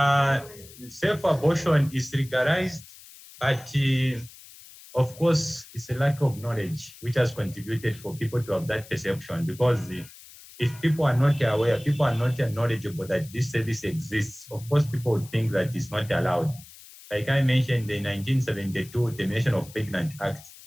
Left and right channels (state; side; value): noise; left; hiss, 20 dB below the sound